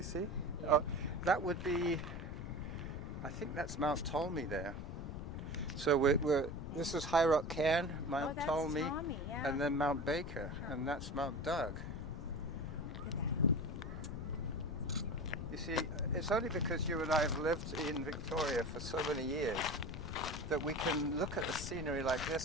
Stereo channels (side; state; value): left; noise; rumble, 6 dB below the sound